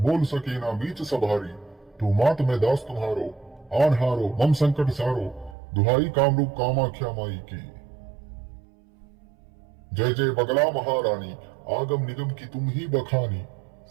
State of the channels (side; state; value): left; drops out; at 5.6 s